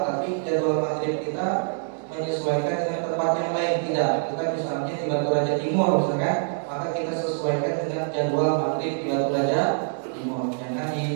tapi jadwal maghrib kita menyesuaikan dengan tempat yang lain. Tidak, kita misalnya di Batu Raja Timur misalkan, maka kita sesuaikan dengan jadwal maghrib di Batu Raja Timur. Jangan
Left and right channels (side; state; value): left; silent; digital silence